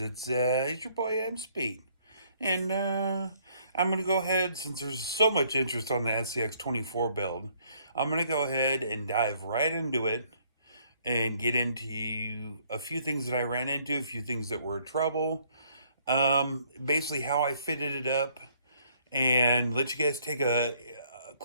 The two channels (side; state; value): both; inverted; correlation -0.65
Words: It's your boy M Speed, and I'm gonna go ahead, since there's so much interest on the Scx24 build. I'm gonna go ahead and dive right into it and get into a few things that I ran into, a few things that were trouble, basically how I fitted it up, and let you guys take a